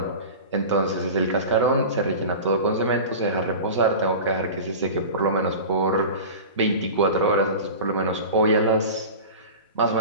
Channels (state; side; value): inverted; both; correlation -0.33